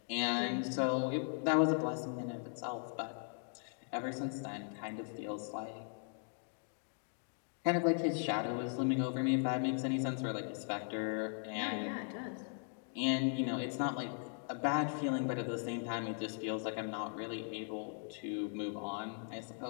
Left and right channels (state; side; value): silent; right; 52 dB below the other